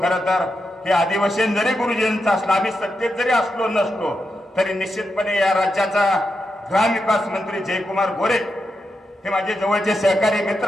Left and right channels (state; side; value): normal; both; correlation 0.86